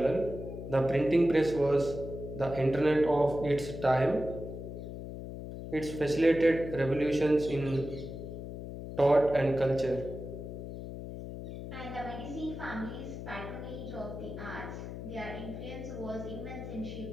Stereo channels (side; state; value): left; noise; hum, 9 dB below the sound